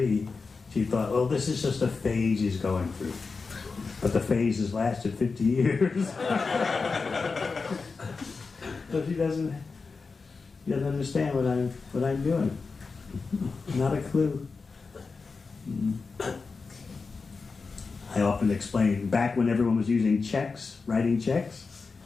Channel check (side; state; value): right; quieter; 4.5 dB